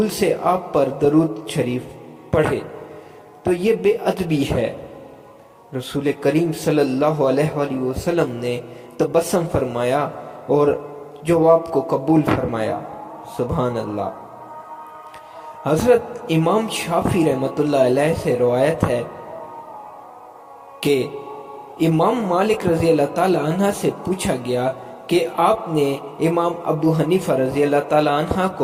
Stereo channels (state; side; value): identical; both; correlation 1.00